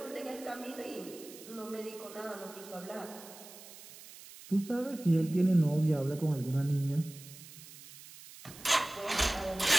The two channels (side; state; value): right; noise; hiss, 17 dB below the sound